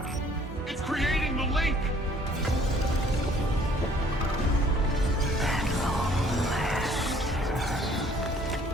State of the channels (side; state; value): both; normal; correlation 0.58